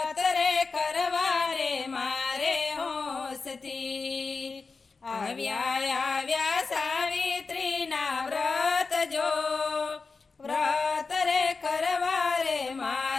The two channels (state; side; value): quieter; right; 4.4 dB